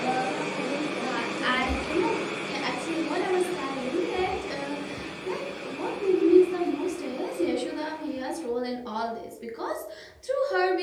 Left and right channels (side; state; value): both; identical; correlation 1.00